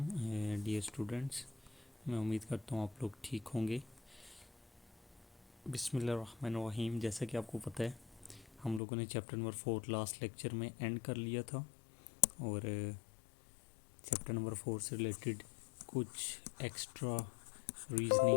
dear students. मैं उम्मीद करता हूँ आप लोग ठीक होंगे। बिस्मिल्लाहिर्रहमानिर्रहीम। जैसा कि आपको पता है हम लोगों ने चैप्टर नंबर 4 लास्ट लेक्चर में एंड कर लिया था और चैप्टर नंबर 4 से रिलेटेड कुछ एक्स्ट्रा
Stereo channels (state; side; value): drops out; right; at 8.8 s